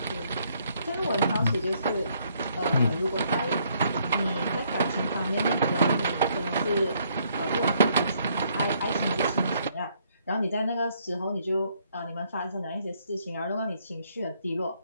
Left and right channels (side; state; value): both; inverted; correlation -0.69